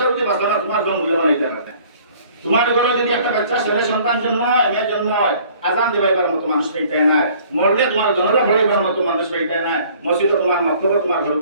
যদি বাঁচতো না তোমার ঘর মূল্য বানাইতে পারবে তোমার ঘরে যদি একটা বাচ্চা ছেলে সন্তান জন্ম হয় মেয়ের জন্ম হয় আজান দিবাইবার মতো মানুষ পেইতাই নাই মরলে তোমার জনরা পড়াইবার মতো মানুষ পেইতাই নাই মসজিদে তোমার মক্তব্য তোমার ঘর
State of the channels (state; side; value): inverted; both; correlation -0.55